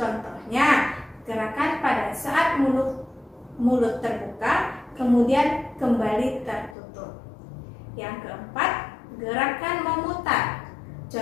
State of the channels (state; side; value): drops out; right; at 6.8 s